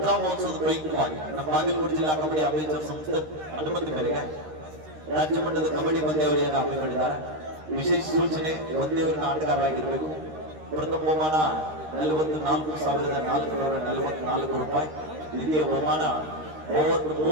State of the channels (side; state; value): left; late; 13 ms